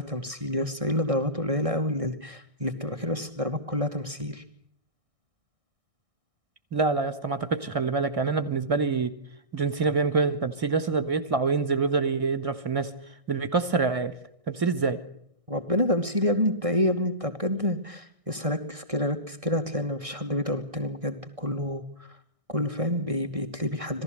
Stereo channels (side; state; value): left; late; 1.6 ms